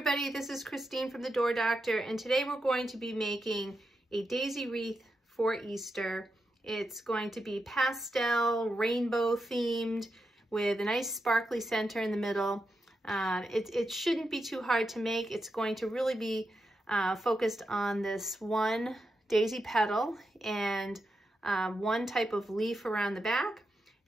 this is Christine from the Door Doctor, and today we're going to be making a daisy wreath for Easter. It's going to be pastel, rainbow themed with a nice sparkly center in the middle. It shouldn't be too hard to make. It's going to really be focused on this one daisy petal and one type of leaf around the back.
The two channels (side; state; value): both; normal; correlation 0.87